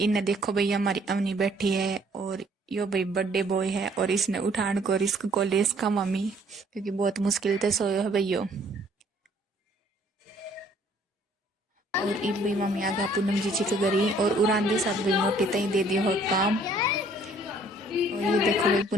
देखो भैया हमारी अवनी बैठी है और यो भाई बर्थडे बॉय है और इसने उठान को रिस्क को ले इसका मम्मी क्योंकि बहुत मुश्किल से सोयो है भैया। और इब भाई मम्मी आ गया पूनम जी के घरी और उरांदी साथ भाई मोटी तई दे दियो है काम। और ये देखो भाई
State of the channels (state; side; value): normal; both; correlation 0.60